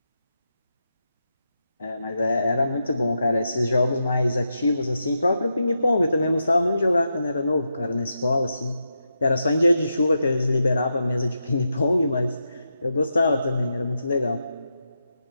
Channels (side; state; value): both; inverted; correlation -0.86